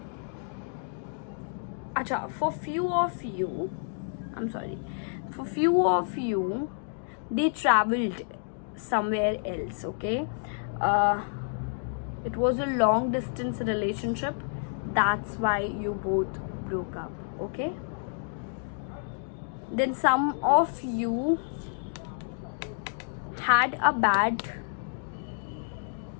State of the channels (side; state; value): right; silent; digital silence